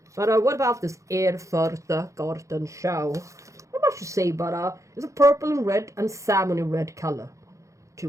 But what about this Gartenschau? Not much to say, but it's a purple and red and salmon red color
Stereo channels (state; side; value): late; left; 0.15 ms